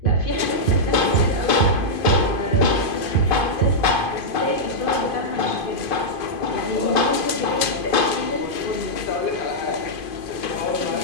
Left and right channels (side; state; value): right; late; 2.5 ms